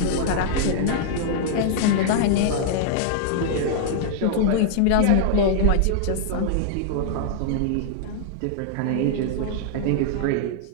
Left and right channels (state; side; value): different; both; correlation -0.01